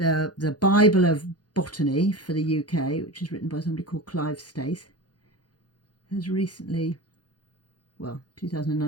Bible of Botany for the UK, which is written by somebody called Clive Stace, has recently, well,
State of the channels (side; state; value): right; late; 0.69 ms